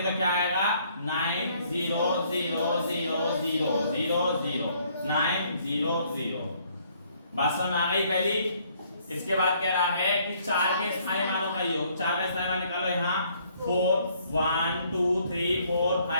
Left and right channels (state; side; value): inverted; both; correlation -0.65